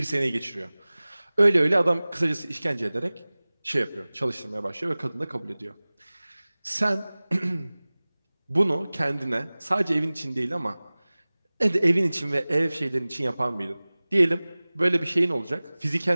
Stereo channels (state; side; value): inverted; both; correlation -0.99